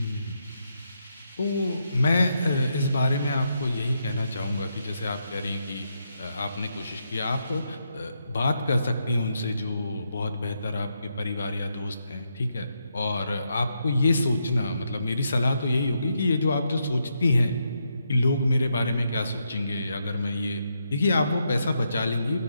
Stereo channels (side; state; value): both; inverted; correlation -0.81